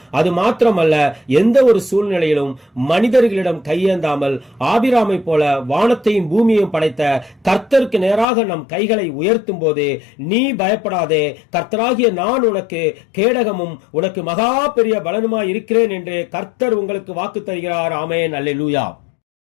அது மாத்திரமல்ல, எந்த ஒரு சூழ்நிலையிலும் மனிதர்களிடம் கையேந்தாமல் ஆபிராமை போல வானத்தையும் பூமியையும் படைத்த கர்த்தருக்கு நேராக நம் கைகளை உயர்த்தும் போது, நீ பயப்படாதே, கர்த்தராகிய நான் உனக்கு கேடகமும் உனக்கு மகா பெரிய பலனுமாய் இருக்கிறேன் என்று கர்த்தர் உங்களுக்கு வாக்கு தருகிறார். ஆமென், அல்லேலூயா.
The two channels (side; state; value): right; drops out; at 8.2 s